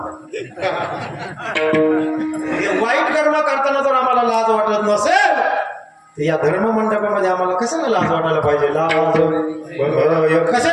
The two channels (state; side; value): identical; both; correlation 1.00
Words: वाईट कर्म करताना जर आम्हाला लाज वाटत नसेल तर या धर्म मंडपामध्ये आम्हाला कशाला लाज वाटायला पाहिजे? लाज